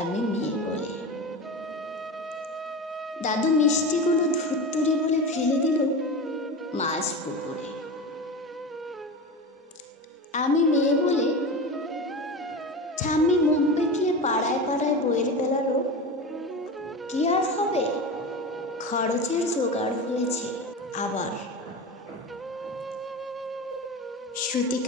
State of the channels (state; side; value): normal; both; correlation 0.26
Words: মেয়ে বলে। দাদু মিষ্টিগুলো ধুত্তুরি বলে ফেলে দিল মাছ পুকুরে। আমি মেয়ে বলে ঠাম্মি মুখ বেঁকিয়ে পাড়ায় পাড়ায় বইয়ের বেলারও কি আর হবে, খরচের জোগাড় হয়েছে। আবার